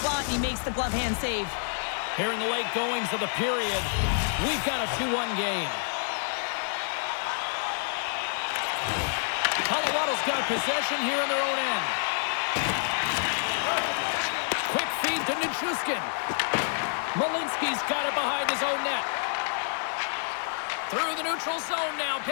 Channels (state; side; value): silent; right; digital silence